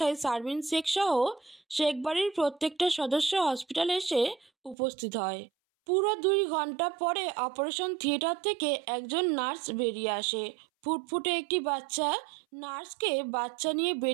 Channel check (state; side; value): drops out; left; at 4.8 s